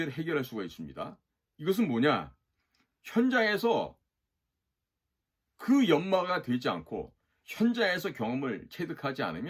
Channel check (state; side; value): identical; both; correlation 1.00